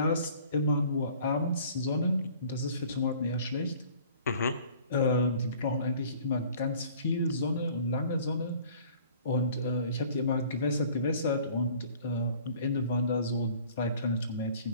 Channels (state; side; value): inverted; both; correlation -0.51